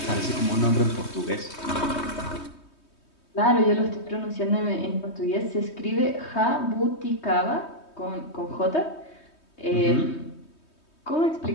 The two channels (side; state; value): right; late; 3.2 ms